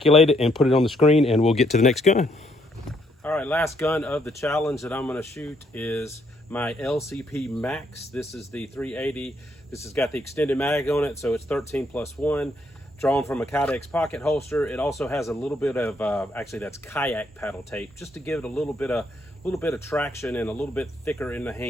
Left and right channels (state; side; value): normal; both; correlation 0.72